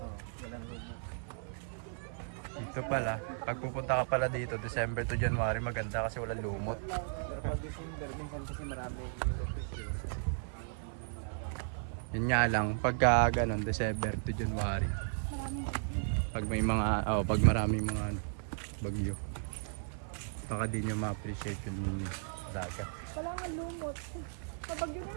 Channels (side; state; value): left; silent; 54 dB below the other